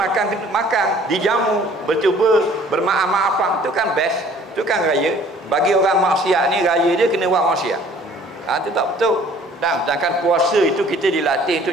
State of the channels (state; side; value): normal; both; correlation 0.54